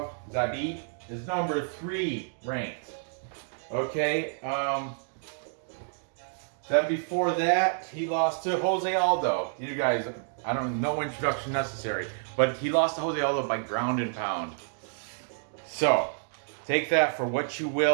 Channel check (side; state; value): left; silent; digital silence